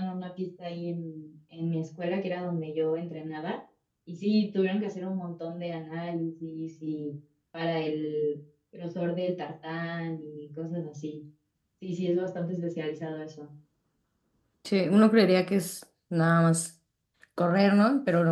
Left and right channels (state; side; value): identical; both; correlation 1.00